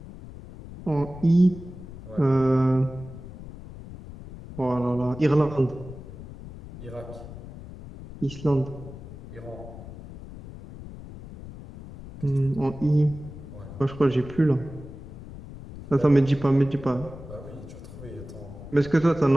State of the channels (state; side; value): noise; left; rumble, 14 dB below the sound